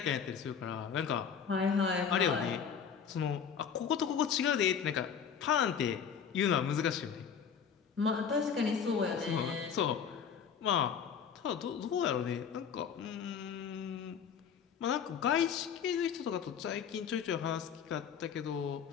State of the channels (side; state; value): right; quieter; 7.2 dB